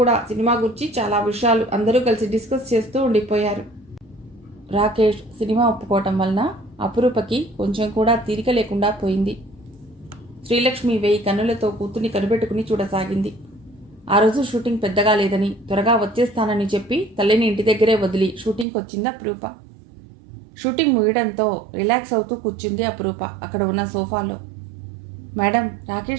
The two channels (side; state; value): left; drops out; at 18.7 s